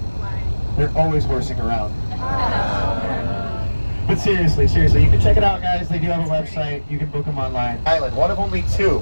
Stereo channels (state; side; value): inverted; both; correlation -1.00